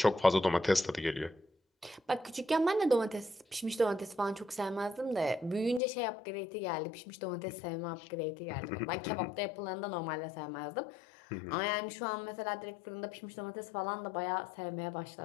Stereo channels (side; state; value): right; drops out; at 5.8 s